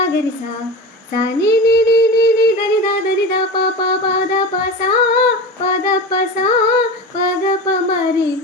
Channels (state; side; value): normal; both; correlation 0.28